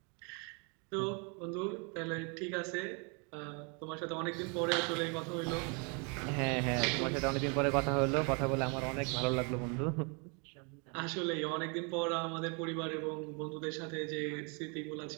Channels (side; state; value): left; quieter; 34.5 dB